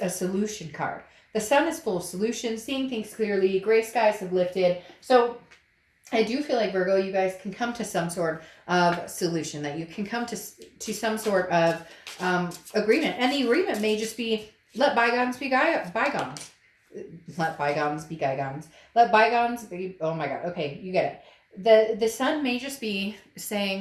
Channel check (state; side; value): identical; both; correlation 1.00